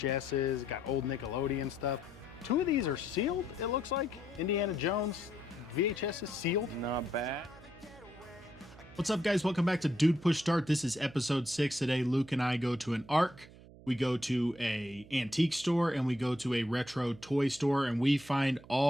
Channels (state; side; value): noise; right; hum, 20 dB below the sound